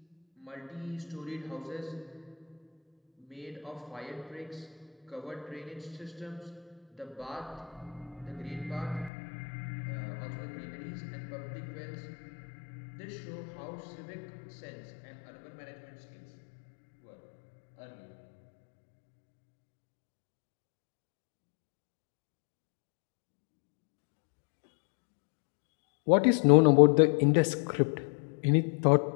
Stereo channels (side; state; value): right; drops out; at 9.1 s